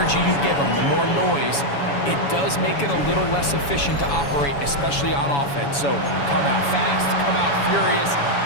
you give them, the more noise, it does make it a little less efficient to operate, especially on offense. So come out fast, come out furious,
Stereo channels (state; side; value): late; right; 7.1 ms